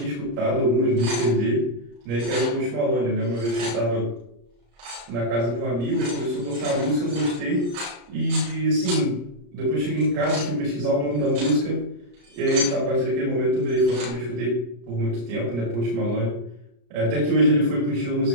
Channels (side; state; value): left; late; 34 ms